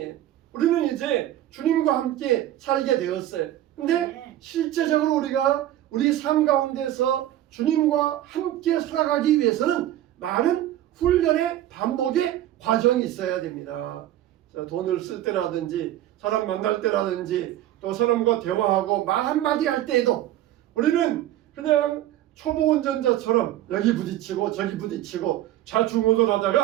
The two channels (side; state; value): left; quieter; 13.3 dB